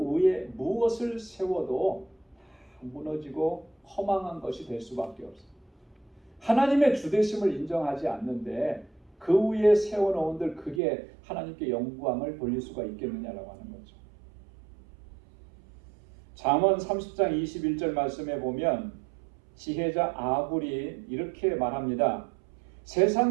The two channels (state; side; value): drops out; left; at 10.8 s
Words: 위에 무엇을 세워도 무너지고 허망한 것이 될 수밖에 없어요. 하나님의 주되심을 인정하지 않는데 그 위에 세워놓은들 그게 하나님께 영광을 돌릴 수가 있겠느냐라고 하는 거죠. 잠언 30장 21절 말씀에 보면 지혜자 아굴이 이렇게 말합니다.